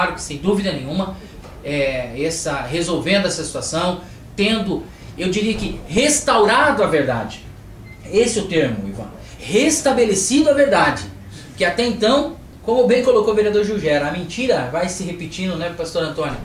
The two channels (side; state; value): both; identical; correlation 1.00